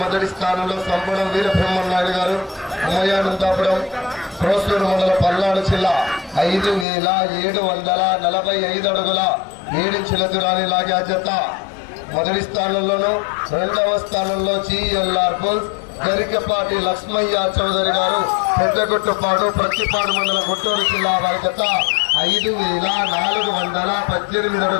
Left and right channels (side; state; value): right; drops out; at 6.9 s